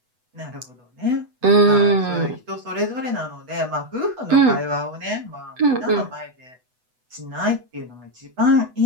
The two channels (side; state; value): left; late; 8.0 ms